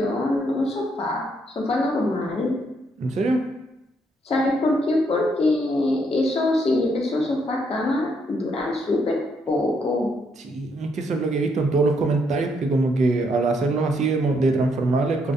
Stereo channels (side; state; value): both; normal; correlation 0.74